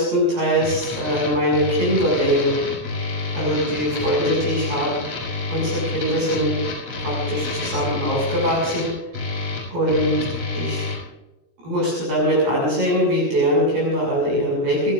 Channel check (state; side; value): late; left; 16 ms